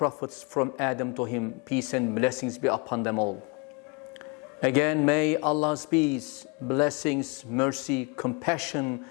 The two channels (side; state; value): right; quieter; 30.9 dB